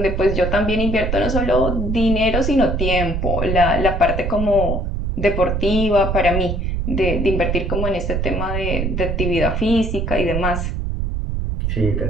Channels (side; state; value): right; noise; rumble, 1 dB below the sound